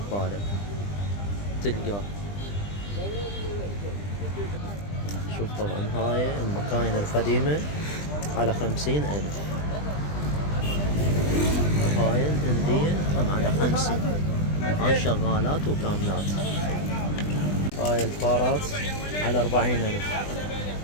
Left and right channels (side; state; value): right; late; 20 ms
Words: تلقاه. شوف طبعا هاي المكاين القديمة على 50,000. هاي الهندية هم على 50. هاي شغالات وكاملات. هاي الفارات على 40,000.